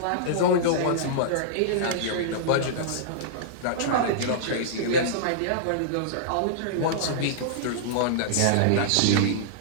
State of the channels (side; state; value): both; different; correlation -0.02